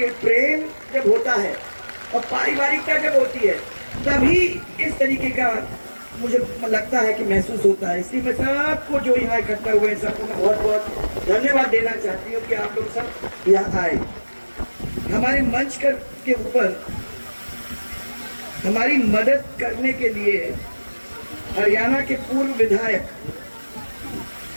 जब होता है और पारिवारिकता जब होती है तभी इस तरीके का मुझे लगता है कि महसूस होता है। इसलिए मैं सबको जो यहाँ इकट्ठा हुए हैं सबको मैं बहुत बहुत धन्यवाद देना चाहती हूँ कि आप लोग सब यहाँ आए। हमारे मंच के ऊपर हमारी मदद करने के लिए हरियाणा के पूर्व विधायक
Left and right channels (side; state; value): both; inverted; correlation -1.00